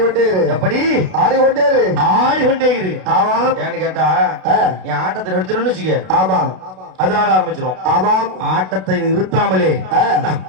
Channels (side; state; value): left; late; 32 ms